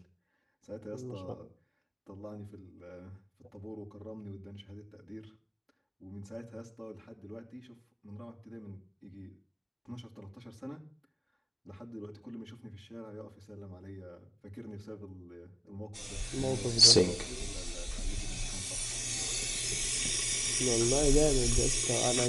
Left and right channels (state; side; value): identical; both; correlation 1.00